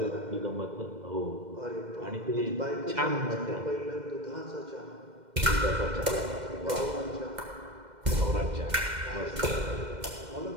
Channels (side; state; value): left; late; 2.1 ms